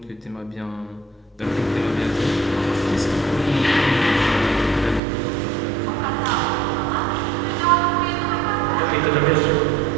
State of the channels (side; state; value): left; drops out; at 5.0 s